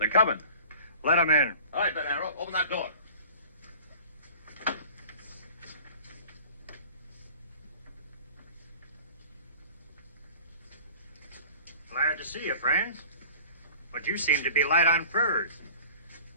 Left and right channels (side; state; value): both; inverted; correlation -0.45